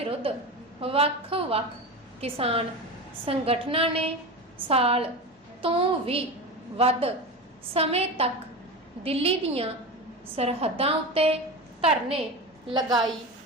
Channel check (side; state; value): both; normal; correlation 0.25